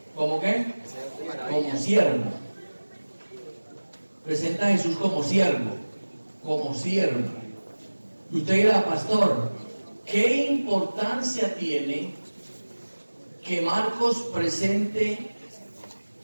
¿qué? Como siervo. Presenta a Jesús como siervo. Y usted dirá, pastor, ¿qué importancia tiene que Marcos presente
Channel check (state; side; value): inverted; both; correlation -1.00